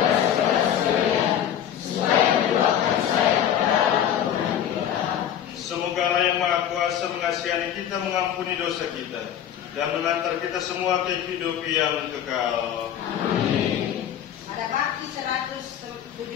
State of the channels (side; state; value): right; quieter; 9.9 dB